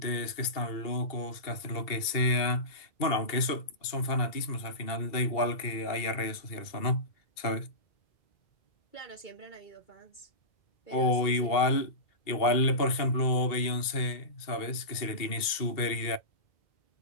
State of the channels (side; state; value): right; late; 2.7 ms